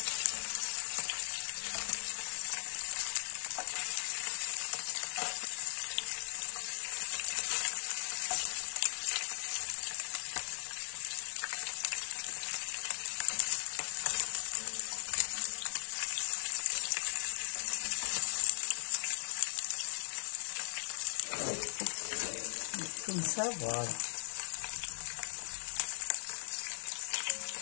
Comme ça, voilà.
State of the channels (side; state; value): right; silent; 53 dB below the other